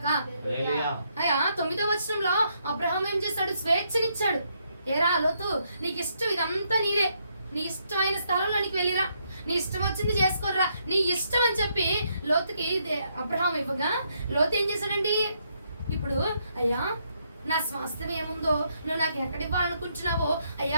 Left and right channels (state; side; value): inverted; both; correlation -0.75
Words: అయ్యా 9వ వచనంలో అబ్రహాం ఏం చేశాడు? స్వేచ్ఛనిచ్చాడు. ఏరా లోతు, నీకు ఇష్టం, ఇదంతా నీదే, నీ ఇష్టమైన స్థలంలోనికి వెళ్ళిరా, నీ ఇష్టం వచ్చింది చేసుకోరా, నీ ఇష్టం అని చెప్పి లోతుకి అబ్రహాం ఇవ్వగా లోతు ఏం చేశాడండి? ఇప్పుడు అయ్యా నా స్వాస్థ్యం ఏముందో నువ్వు నాకు ఎక్కడ ఇవ్వాలనుకుంటున్నావో అయ్యా